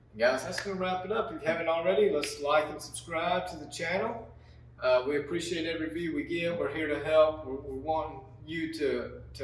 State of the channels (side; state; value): both; identical; correlation 1.00